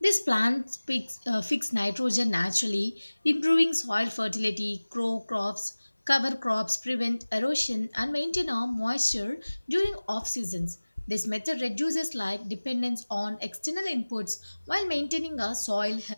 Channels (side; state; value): both; inverted; correlation -1.00